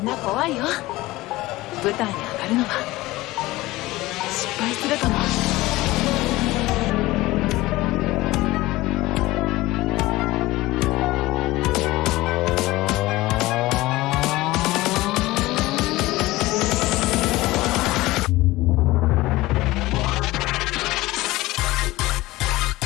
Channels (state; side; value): quieter; right; 18.9 dB